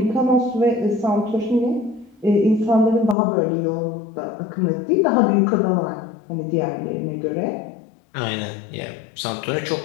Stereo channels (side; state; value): right; drops out; at 3.2 s